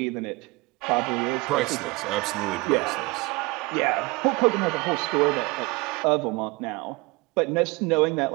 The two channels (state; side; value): quieter; left; 25.0 dB